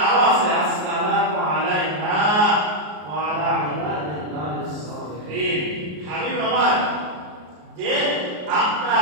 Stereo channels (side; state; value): left; late; 33 ms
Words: আরো আছে, আসসালামু আলাইনা ওয়া আলা ইবাদিল্লাহিস সালিহিন। হাবিব আমার যে